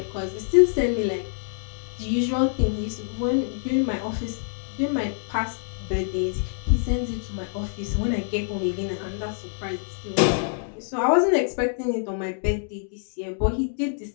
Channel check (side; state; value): right; silent; digital silence